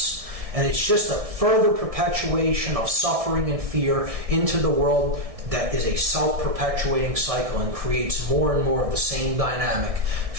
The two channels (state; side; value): late; left; 1.6 ms